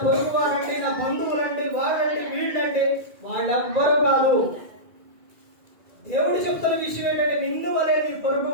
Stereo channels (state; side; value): late; left; 2.4 ms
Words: పొరుగు వారండి, నా బంధువులండి, వాళ్ళండి, వీళ్ళండి, వాళ్ళెవ్వరూ కాదు. దేవుడు చెప్తున్న విషయం ఏంటంటే నిన్ను వలె నీ పొరుగు